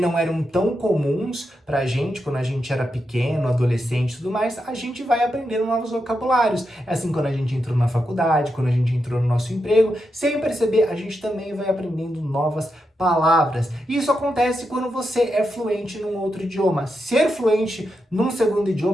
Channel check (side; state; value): both; normal; correlation 0.86